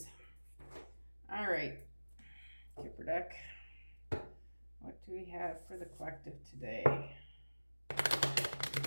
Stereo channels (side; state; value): both; inverted; correlation -1.00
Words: All right, Kipper deck. What do we have for the collective today?